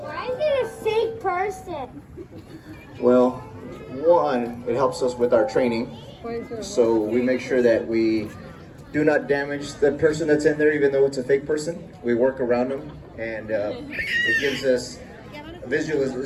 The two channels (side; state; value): both; identical; correlation 1.00